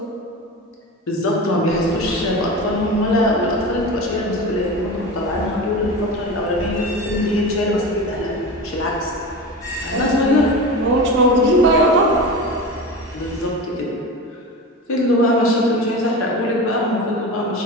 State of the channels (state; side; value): normal; both; correlation 0.28